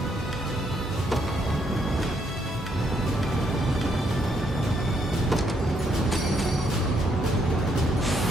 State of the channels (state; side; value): normal; both; correlation 0.74